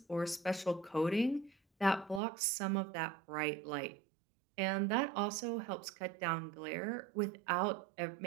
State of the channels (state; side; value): drops out; left; at 2.2 s